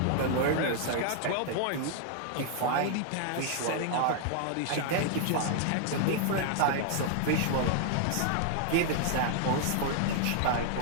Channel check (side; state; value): both; different; correlation 0.00